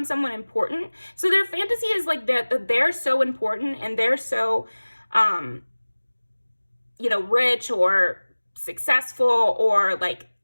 someone important. So their fantasy is like that they're so important, and they're so, you know, rich or successful or like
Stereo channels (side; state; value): both; inverted; correlation -1.00